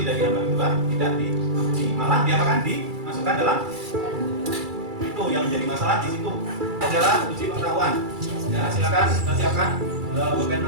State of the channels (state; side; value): late; left; 2.3 ms